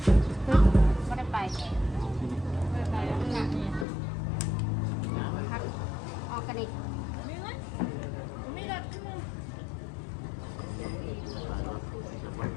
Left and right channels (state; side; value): drops out; right; at 3.9 s